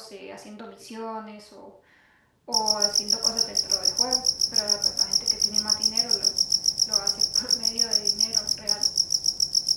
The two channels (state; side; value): identical; both; correlation 1.00